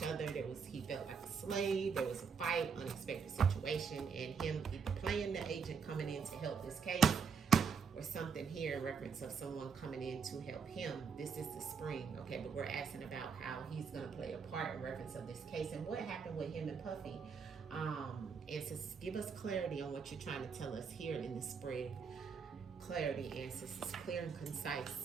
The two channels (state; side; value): quieter; left; 5.9 dB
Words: other. He felt like a slave. There was a fight, unexpected situation, and him either playing the agent coming in to help this case, or something here in reference of someone coming in to help him. This is the spring, okay? But we're asking about how he's gonna play a part in reference of this case and what happened with him and Puffy. Ancestors, give us clarity on what you're trying to tell us here in the spread. Clarity, ancestors, clear and